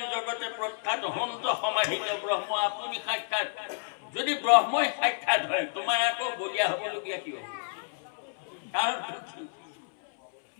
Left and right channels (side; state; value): right; silent; 58 dB below the other